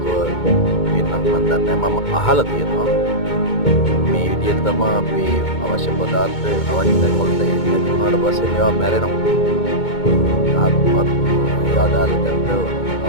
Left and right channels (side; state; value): right; late; 2.2 ms